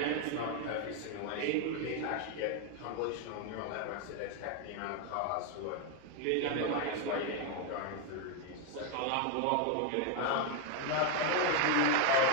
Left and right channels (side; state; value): both; different; correlation 0.01